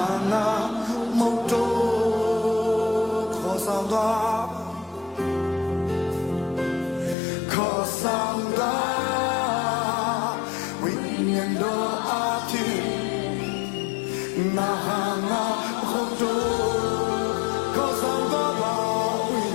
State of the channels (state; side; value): drops out; right; at 7.2 s